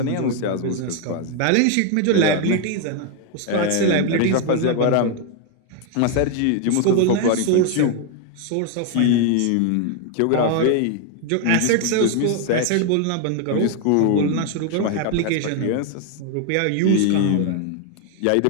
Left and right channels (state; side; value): different; both; correlation 0.01